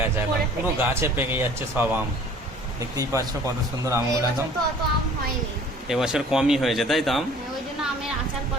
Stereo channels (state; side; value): normal; both; correlation 0.50